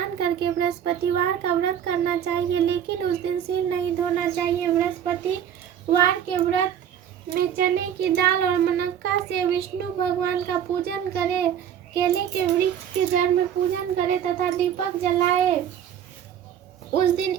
करके बृहस्पतिवार का व्रत करना चाहिए, लेकिन उस दिन सिर नहीं धोना चाहिए। बृहस्पतिवार के व्रत में चने की दाल और मनक्का से विष्णु भगवान का पूजन करे, केले के वृक्ष के जड़ में पूजन करे तथा दीपक जलाए। उस दिन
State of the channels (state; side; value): quieter; left; 9.4 dB